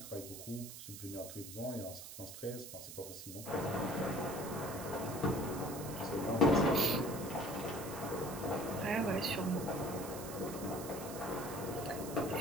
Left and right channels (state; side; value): noise; right; hiss, 11 dB below the sound